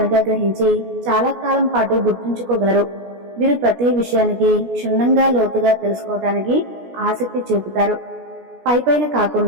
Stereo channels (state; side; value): late; left; 17 ms